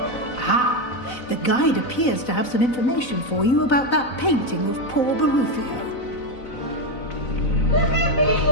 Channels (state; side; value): late; right; 4.0 ms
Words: The guide appears to have some information for you about that painting of poor Barufio.